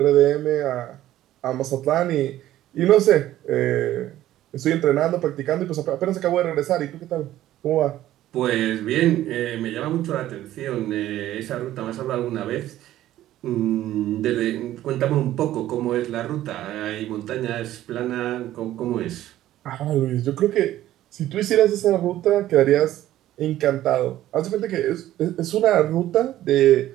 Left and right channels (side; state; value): left; quieter; 13.7 dB